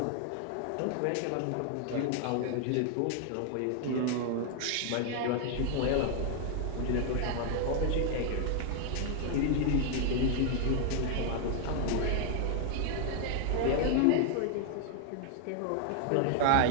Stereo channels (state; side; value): different; both; correlation 0.00